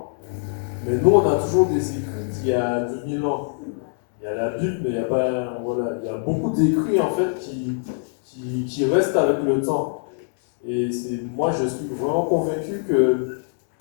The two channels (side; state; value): right; silent; digital silence